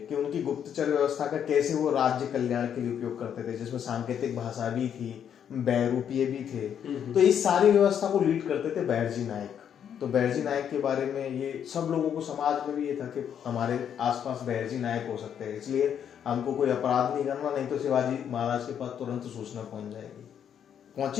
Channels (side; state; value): right; quieter; 8.7 dB